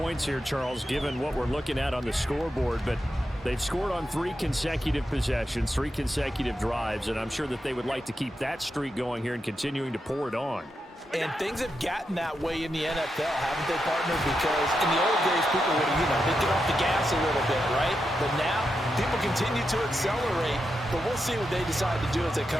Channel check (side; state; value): both; normal; correlation 0.86